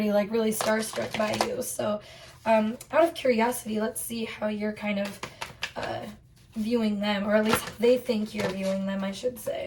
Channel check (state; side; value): identical; both; correlation 1.00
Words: like really starstruck by you. So out of curiosity, let's see how you're kind of viewing them, or at least they think you're viewing them, I should